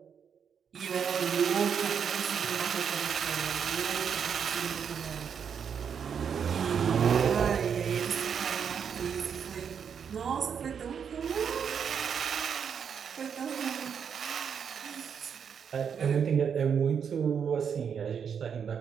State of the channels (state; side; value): quieter; left; 7.3 dB